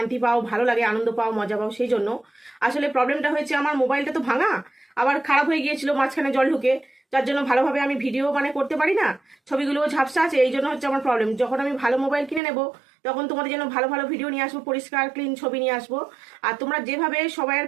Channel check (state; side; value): drops out; left; at 12.4 s